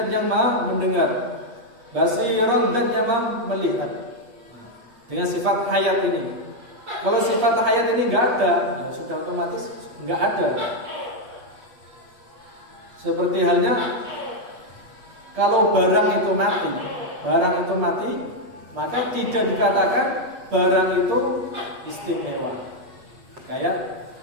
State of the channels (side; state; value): left; late; 8.3 ms